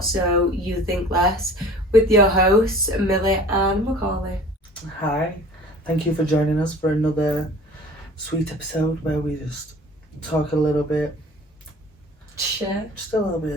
you think less, with your hosts, Millie and Macaulay. Hi, thank you for joining us for another sweet episode where we just talk a little bit, Shit. just a little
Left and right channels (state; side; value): normal; both; correlation 0.45